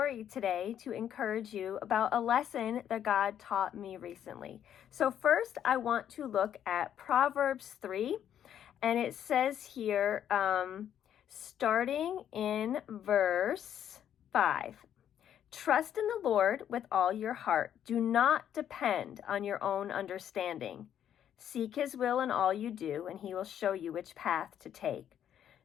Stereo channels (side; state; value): right; quieter; 9.9 dB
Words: today to encourage you about a lesson that God taught me recently. So first, I want to look at Proverbs 3, and it says here, starting in verse 5, trust in the Lord with all your heart. Do not depend on your own understanding. Seek His will in all you do, and He will show you which path to take.